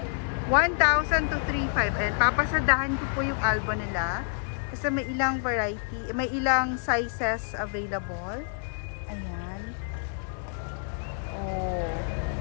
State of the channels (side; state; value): right; silent; 59 dB below the other